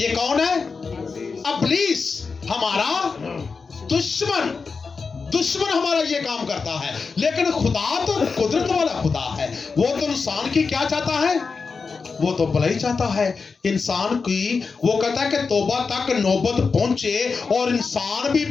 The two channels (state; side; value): quieter; right; 4.8 dB